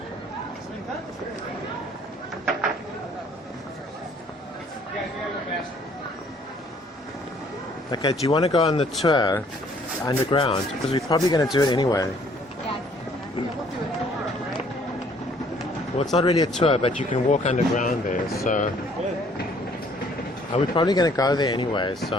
Okay, do you want to go on the tour underground? Because we're probably going to do it anyway. Yeah, we'll do a tour, right? Well, it's not really a tour, but you can walk underground there, so... We're probably going to go there anyway, so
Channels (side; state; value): both; normal; correlation 0.60